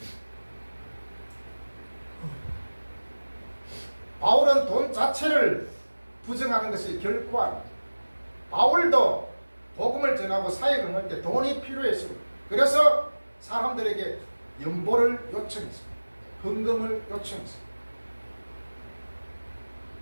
바울은 돈 자체를 부정하는 것이 결코 아닙니다. 바울도 복음을 전하고 사역을 할 때 돈이 필요했습니다. 그래서 사람들에게 연보를 요청했습니다. 헌금을 요청했습니다.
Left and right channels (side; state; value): both; inverted; correlation -1.00